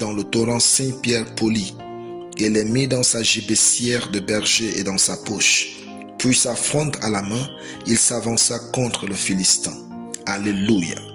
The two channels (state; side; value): identical; both; correlation 1.00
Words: le torrent 5 pierres polies, et les mit dans sa gibecière de berger et dans sa poche. Puis sa fronde à la main, il s'avança contre le Philistin. Alléluia.